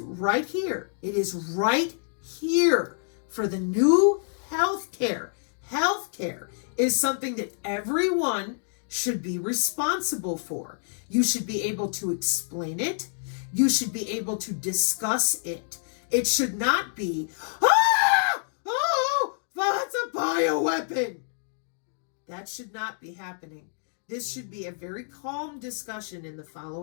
right here? It is right here for the new healthcare. Healthcare is something that everyone should be responsible for. You should be able to explain it. You should be able to discuss it. It should not be, oh, that's a bioweapon. That should not be happening. This should be a very calm discussion in the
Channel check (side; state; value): right; silent; digital silence